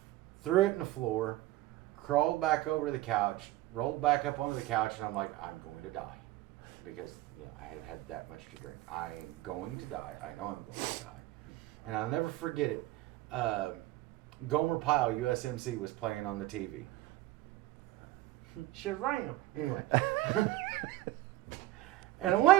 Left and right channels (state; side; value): quieter; left; 16.8 dB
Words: threw it in the floor, crawled back over to the couch, rolled back up onto the couch, and I'm like, I'm going to die. Because I had had that much to drink. I am going to die. I know I'm going to die. And I'll never forget it. Gomer Pyle, USMC, was playing on the TV. Sharam. Anyway. And I'm